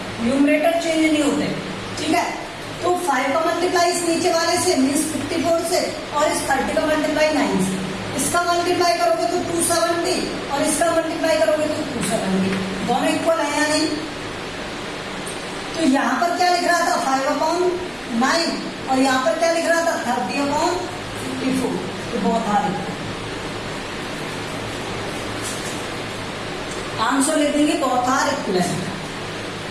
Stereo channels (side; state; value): both; identical; correlation 1.00